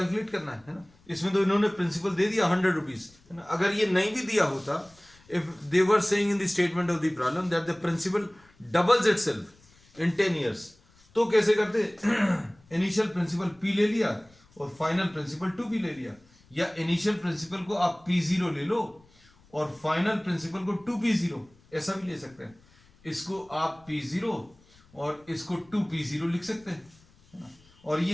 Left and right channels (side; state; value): left; noise; rumble, 29 dB below the sound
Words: करना है ना. इसमें तो इन्होंने प्रिंसिपल दे दिया 100 रुपीज, है ना. अगर ये नहीं भी दिया होता, if they were saying in the statement of the problem that the principal doubles itself in 10 years, तो कैसे करते? इनिशियल प्रिंसिपल P ले लिया और फाइनल प्रिंसिपल 2P ले लिया. या इनिशियल प्रिंसिपल को आप P0 ले लो और फाइनल प्रिंसिपल को 2P0, ऐसा भी ले सकते हैं. इसको आप P0 और इसको 2P0 लिख सकते हैं. और